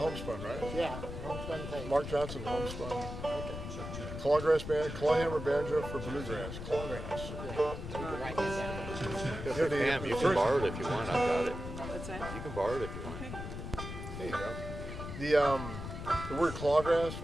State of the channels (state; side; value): noise; left; rumble, 8 dB below the sound